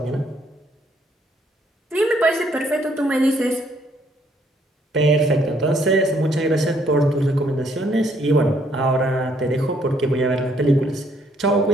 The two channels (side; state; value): both; normal; correlation 0.68